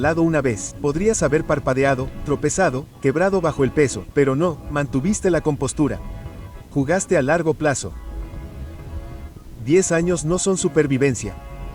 una vez, podrías haber parpadeado, tropezado, quebrado bajo el peso, pero no, mantuviste la compostura. Jugaste a largo plazo. 10 años no son supervivencia.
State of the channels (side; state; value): both; identical; correlation 1.00